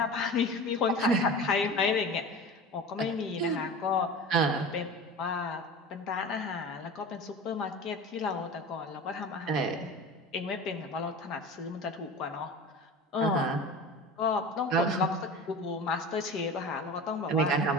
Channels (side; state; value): both; normal; correlation 0.34